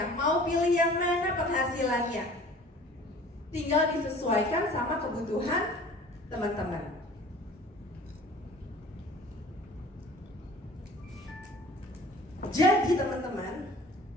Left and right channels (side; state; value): both; normal; correlation 0.47